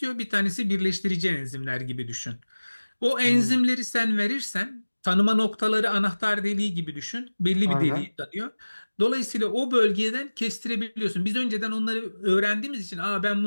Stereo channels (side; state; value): both; inverted; correlation -1.00